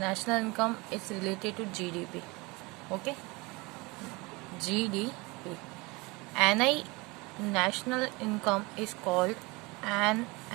income is related to GDP. Okay, GDP. NI national income is called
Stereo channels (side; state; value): left; quieter; 25.1 dB